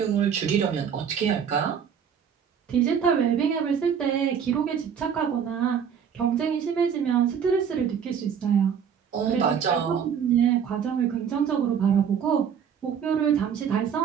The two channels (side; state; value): left; quieter; 7.7 dB